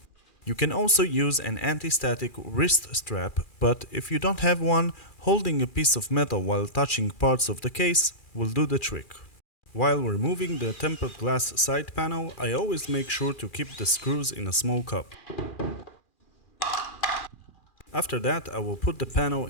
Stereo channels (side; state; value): right; late; 2.4 ms